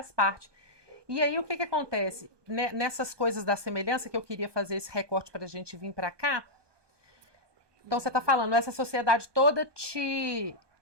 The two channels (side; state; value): left; late; 1.2 ms